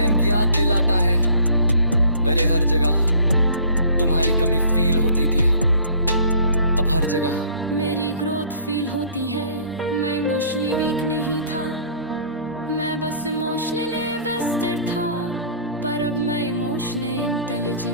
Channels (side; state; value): both; inverted; correlation -0.52